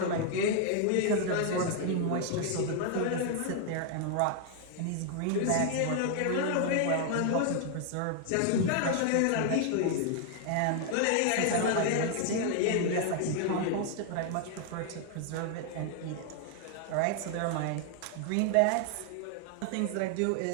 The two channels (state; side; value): different; both; correlation 0.00